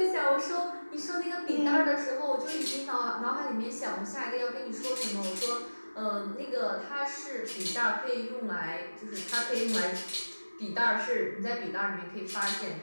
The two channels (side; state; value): both; inverted; correlation -1.00